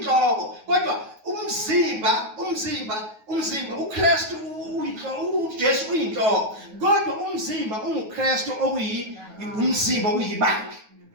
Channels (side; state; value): left; late; 9.4 ms